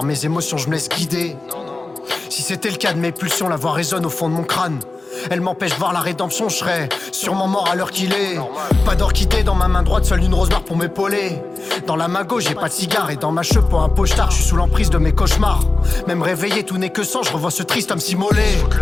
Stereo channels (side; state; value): right; quieter; 3.3 dB